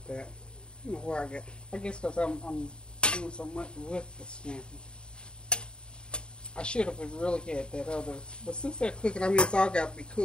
that. I don't know where I guess because I'm doing so much with the scampi. I should have really had that other, but since they're cooking, I mean, it's all got to be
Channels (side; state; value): right; late; 0.051 ms